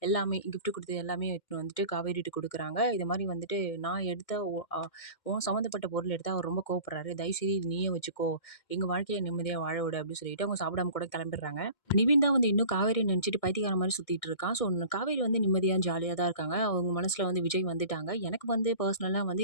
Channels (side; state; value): right; late; 2.1 ms